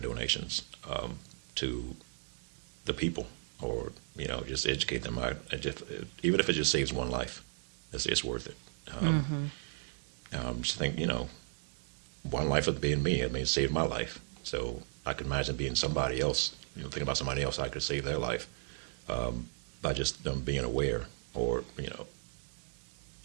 to the people, or you know, just educate them. Even if it just saves one life, it's worth it. Just think, you know, one life of being me, I mean, it saved my life. So I can imagine being somebody else, you know, thinking about somebody else, I could save their life by just them being aware, or, you know,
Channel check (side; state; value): left; silent; 54 dB below the other